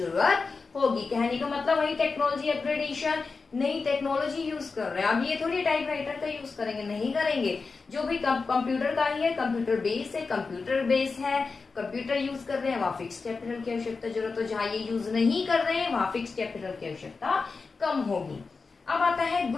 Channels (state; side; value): quieter; right; 4.4 dB